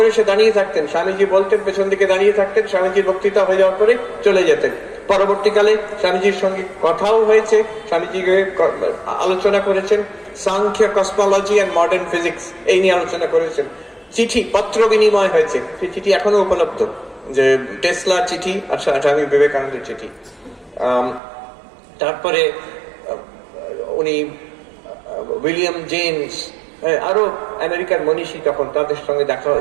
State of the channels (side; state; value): left; drops out; at 21.2 s